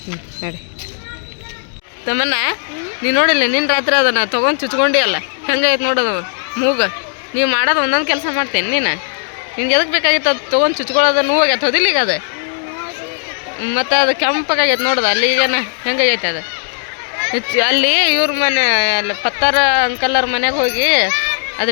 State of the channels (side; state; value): right; silent; digital silence